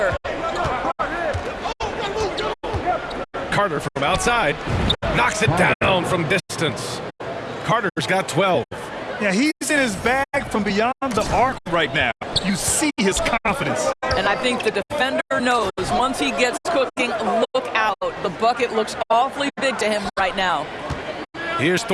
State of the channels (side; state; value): both; identical; correlation 1.00